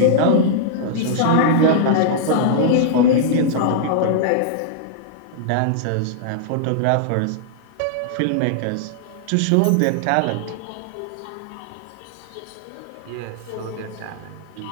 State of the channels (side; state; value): both; different; correlation -0.02